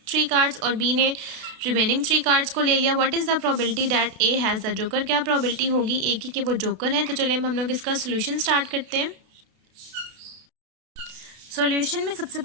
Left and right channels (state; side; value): late; left; 32 ms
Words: 3 cards, और बी ने रिमेनिंग 3 कार्ड्स को ले लिया। What is the probability that A has the joker, क्या प्रोबेबिलिटी होगी ए की कि वो जोकर है। तो चलिए हम लोग इसका सोल्यूशन स्टार्ट करते हैं। सॉल्यूशन में सबसे